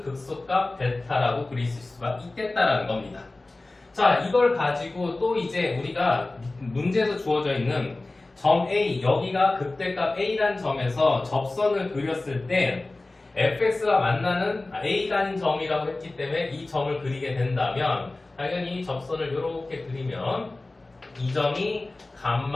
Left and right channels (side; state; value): right; quieter; 3.0 dB